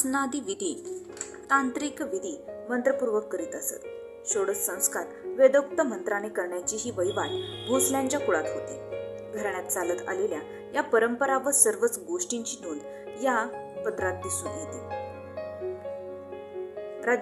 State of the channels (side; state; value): both; identical; correlation 1.00